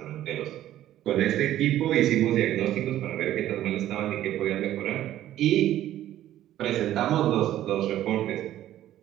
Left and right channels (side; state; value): left; quieter; 12.9 dB